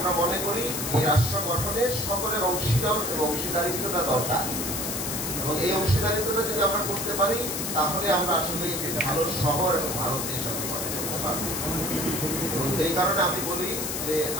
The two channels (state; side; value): noise; left; hiss, 3 dB below the sound